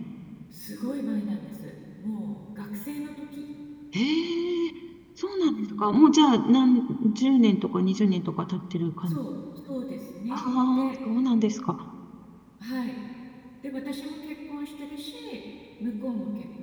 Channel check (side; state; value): both; identical; correlation 1.00